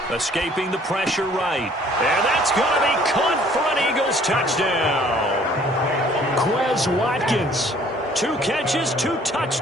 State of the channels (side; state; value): both; normal; correlation 0.57